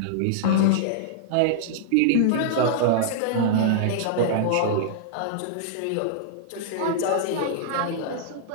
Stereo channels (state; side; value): different; both; correlation -0.01